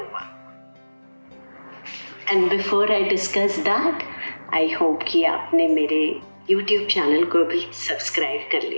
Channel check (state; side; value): inverted; both; correlation -1.00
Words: And before I discuss that, I hope कि आपने मेरे YouTube चैनल को भी सब्सक्राइब कर